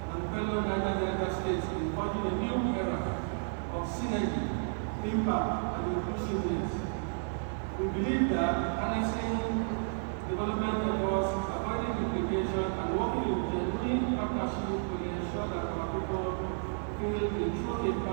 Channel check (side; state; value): left; silent; 56 dB below the other